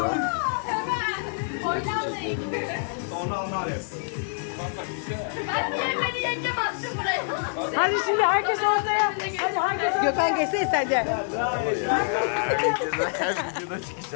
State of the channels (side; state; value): right; silent; digital silence